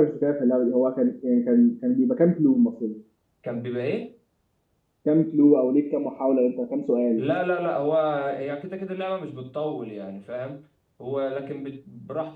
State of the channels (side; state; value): both; identical; correlation 1.00